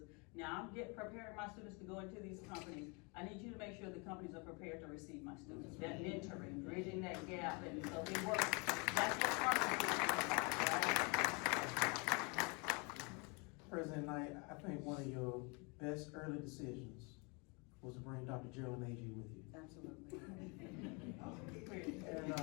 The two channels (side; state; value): right; quieter; 30.9 dB